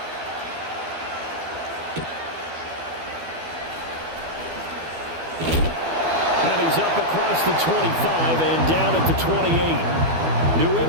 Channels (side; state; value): left; late; 12 ms